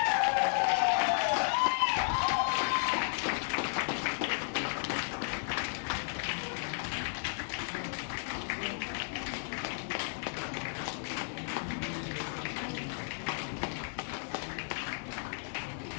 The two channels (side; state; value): right; silent; digital silence